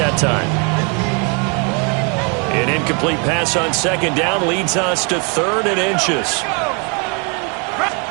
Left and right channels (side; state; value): left; quieter; 35.2 dB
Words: time. An incomplete pass on 2nd down leads us to 3rd and inches.